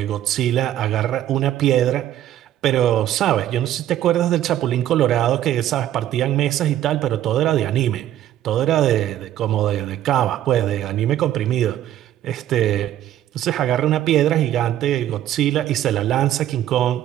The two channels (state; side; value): quieter; left; 12.3 dB